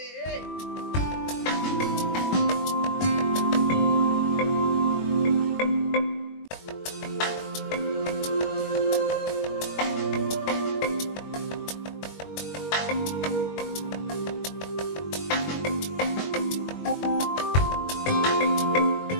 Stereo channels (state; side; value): late; right; 21 ms